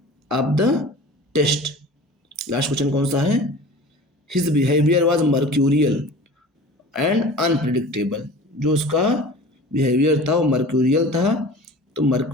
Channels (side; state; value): both; normal; correlation 0.40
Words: of the test. Last question कौन सा है? His behaviour was mercurial and unpredictable. जो उसका बिहेवियर था वो मर्क्यूरियल था। तो